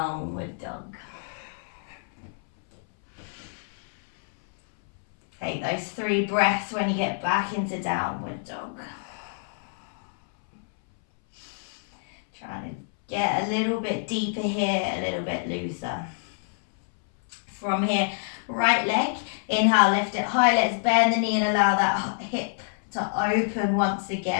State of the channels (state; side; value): silent; right; 60 dB below the other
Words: dog. Take those 3 breaths when you get back into downward dog. Trying to get a little bit deeper here, a little bit looser. From here, right leg, inhale, lift it high, let's bend the knee and allow that hip to open once